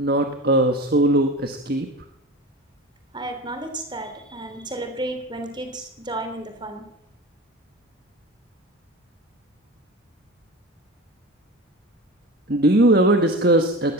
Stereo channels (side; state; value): both; normal; correlation 0.32